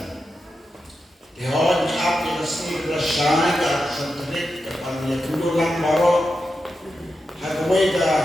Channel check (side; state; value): both; normal; correlation 0.89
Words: Dihon up yang sini bersyai ke sentrik kepada dulu lang baro hagway ka